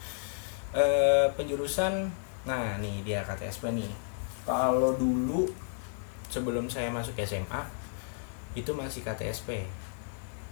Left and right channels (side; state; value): right; silent; digital silence